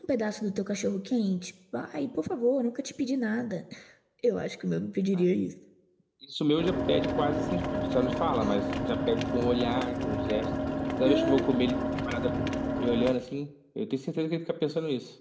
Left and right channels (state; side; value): identical; both; correlation 1.00